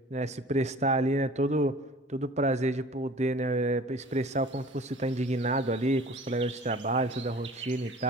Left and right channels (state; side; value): normal; both; correlation 0.45